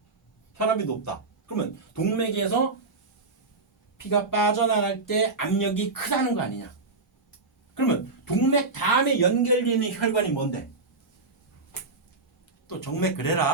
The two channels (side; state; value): left; quieter; 3.7 dB